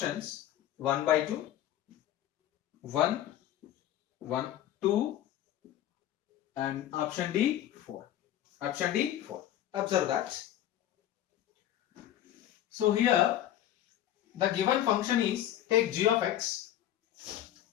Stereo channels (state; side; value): quieter; right; 12.2 dB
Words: 1 by 2, 1, 1, 2 and option D 4. Option D 4. Observe that. So here the given function is, take g of x.